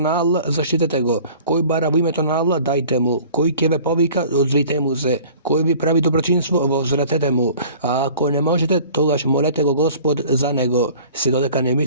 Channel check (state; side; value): inverted; both; correlation -0.47